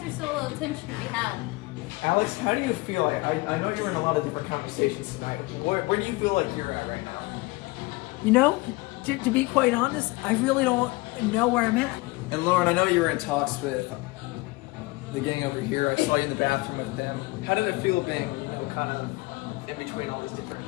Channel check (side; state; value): right; quieter; 23.2 dB